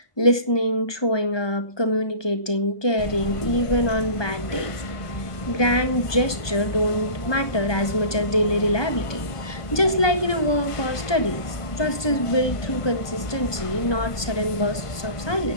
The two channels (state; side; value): late; right; 1.2 ms